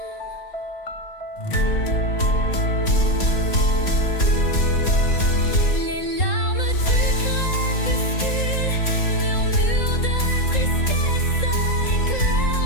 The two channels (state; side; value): late; right; 3.8 ms